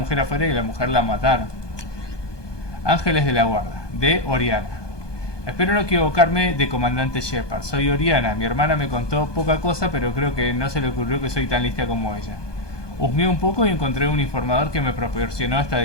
afuera y la mujer la mataron. Ángeles de la Guarda, de Oriana. Espero no equivocarme de comandante Shepard. Soy Oriana. Mi hermana me contó poca cosa, pero creo que no se le ocurrió que soy tan lista como ella. Husmeé un poco y encontré un informador que me proporcionó esta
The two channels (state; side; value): late; right; 1.2 ms